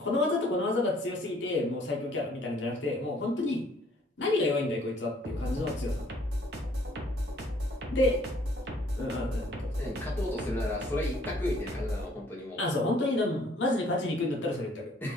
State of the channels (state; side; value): normal; both; correlation 0.60